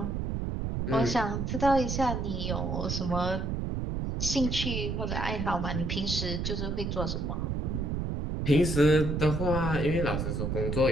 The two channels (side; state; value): right; noise; rumble, 2 dB below the sound